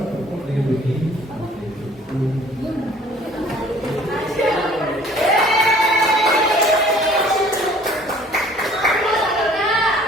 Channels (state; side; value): normal; both; correlation 0.53